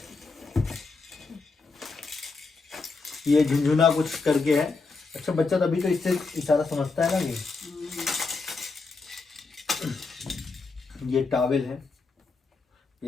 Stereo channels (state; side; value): quieter; right; 4.1 dB